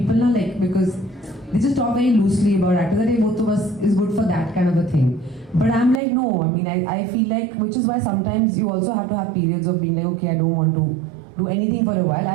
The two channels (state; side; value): drops out; left; at 6.0 s